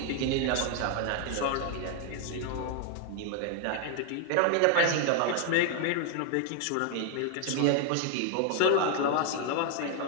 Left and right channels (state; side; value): different; both; correlation 0.00